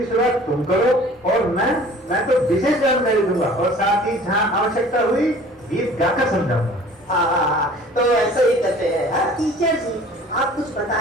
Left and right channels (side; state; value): both; normal; correlation 0.48